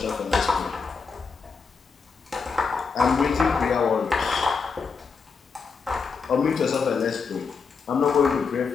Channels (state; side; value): quieter; right; 5.3 dB